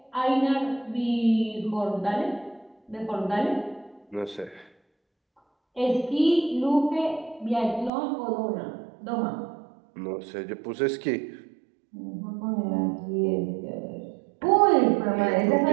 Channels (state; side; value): drops out; left; at 7.9 s